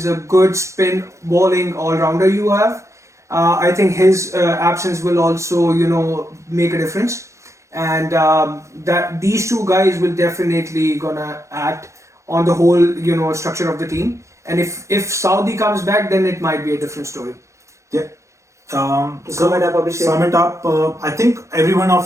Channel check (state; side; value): late; left; 0.14 ms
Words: a good spin bowling all-rounder you have. I think his absence will also, make a difference. And that these two guys will definitely gonna act on the whole, structure of the team. And if Saudi comes back, then it might be a different story. Yeah. Sum it up, Abhishek. Sum it up. I think every one